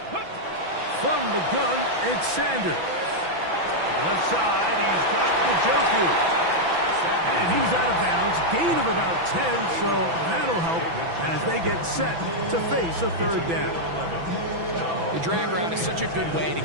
From the gun, it's Sanders. Left side, he's got Njoku. And he's out of bounds. Gain of about 10, so that'll help as they get set to face a third down. The drag route is such a good way to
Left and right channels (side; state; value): left; late; 6.0 ms